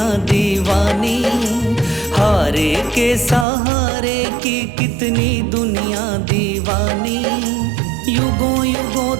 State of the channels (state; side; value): drops out; left; at 3.5 s